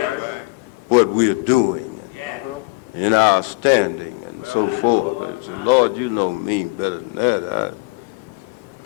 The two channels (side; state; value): right; quieter; 26.6 dB